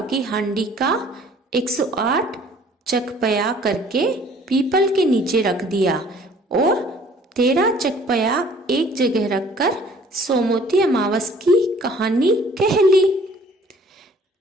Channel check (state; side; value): normal; both; correlation 0.54